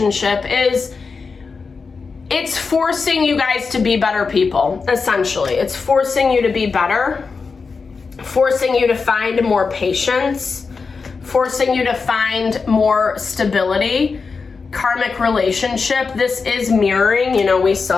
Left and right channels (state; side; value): quieter; right; 4.8 dB